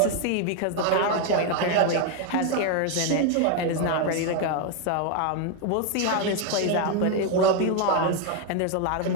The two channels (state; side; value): different; both; correlation 0.01